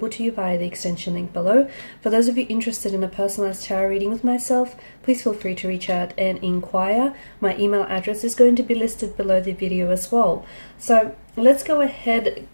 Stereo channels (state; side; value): inverted; both; correlation -1.00